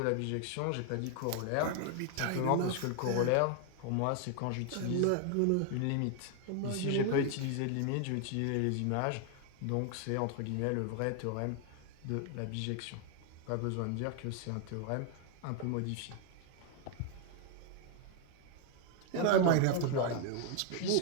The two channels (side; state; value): both; different; correlation 0.00